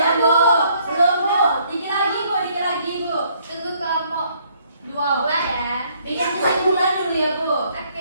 Bu. Belum, Bu. Dikit lagi, Bu. Tunggu kelompok 2 ya. Bikin kesimpulan dulu ya, Bu.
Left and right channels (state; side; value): inverted; both; correlation -0.66